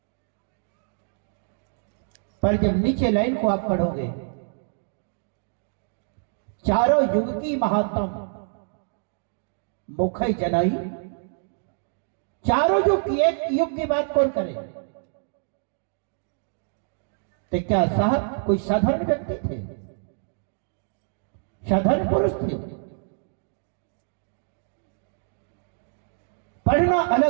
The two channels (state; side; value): silent; left; digital silence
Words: पर जब नीचे लाइन को आप पढ़ोगे, चारों युग की महात्म मुखई जलाई, चारों युग की एक युग की बात कौन करे? तो क्या साहब कोई साधारण व्यक्ति थे? साधारण पुरुष थे? पढ़ना